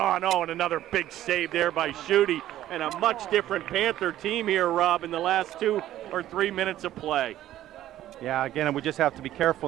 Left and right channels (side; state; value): left; quieter; 13.3 dB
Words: and another big save there by Schutte. And a much different Panther team here, Rob, in the last 2 or 3 minutes of play. Yeah, again, we just have to be careful,